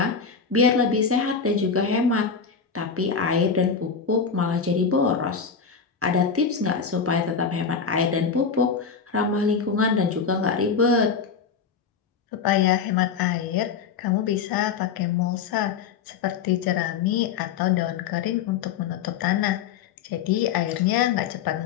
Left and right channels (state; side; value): quieter; right; 6.0 dB